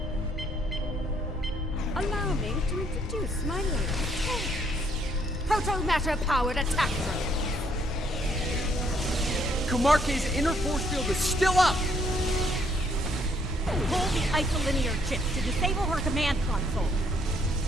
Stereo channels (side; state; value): both; normal; correlation 0.68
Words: Allow me to introduce my latest proto-matter-powered attack drone. Kumarke's inner force field is still up! Pull the isolinear chip to disable her command console.